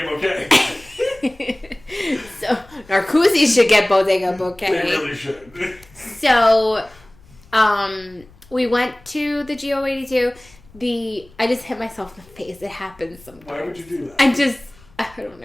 Bouquet. So, Narcoossee's should get Bodega Bouquet. They really should. So, we went to the GO82. I just hit myself in the face. It happens sometimes. Why would you do that? I don't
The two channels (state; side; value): noise; left; rumble, 26 dB below the sound